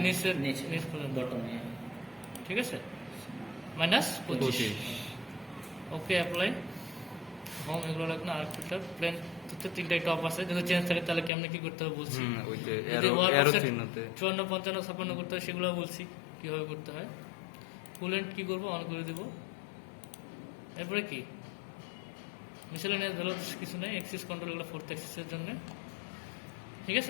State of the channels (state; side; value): drops out; right; at 11.3 s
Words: নিচ পর্যন্ত, বটমে ঠিক আছে? -25। ওকে, অ্যাপ্লাই। হোম এগুলো লাগবে না। আর একটা প্লেন হচ্ছে 3টাই টপ আছে, যদি চেঞ্জ থাকে তাহলে কেমনে কি করতে হবে বলছি। ওই যে যদি অ্যারো চিহ্নতে 54, 55, 56 করতে হয় সেগুলো বলছি কিভাবে করতে হয়। কুলেন্ট কি করবো, অন করে দিব। এরপরে কি মিসেলেনিয়াস ভ্যালু কিছু নেই, এক্সিস কন্ট্রোল এগুলো 4th এক্সিসের জন্য, ঠিক